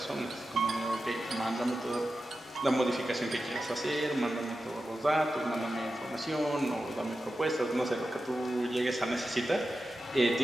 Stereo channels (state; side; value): normal; both; correlation 0.92